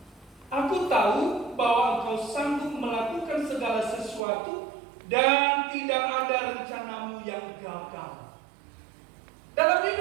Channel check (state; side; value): drops out; left; at 4.2 s